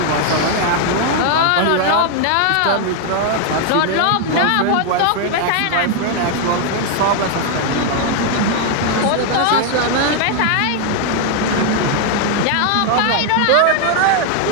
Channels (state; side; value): different; both; correlation 0.00